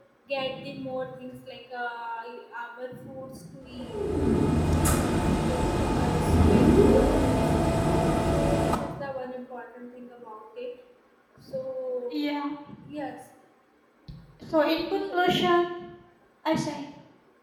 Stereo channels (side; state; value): both; identical; correlation 1.00